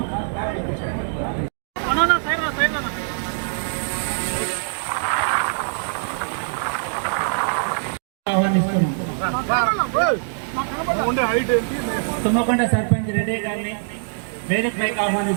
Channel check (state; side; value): silent; left; digital silence